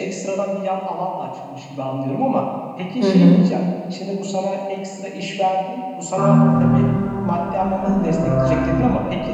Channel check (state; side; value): identical; both; correlation 1.00